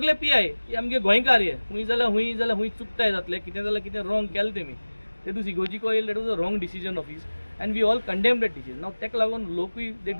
PI हे आमगे गोंयकार हे हुंय जाल्यार हुंय चुकताय जातले कितें जाल्यार कितें रॉंग केलें तेमी ते दीस इगोजिको येयले that was a wrong decision of his and we all condemn that decision now तेका लागून लोकूय they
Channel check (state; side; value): inverted; both; correlation -1.00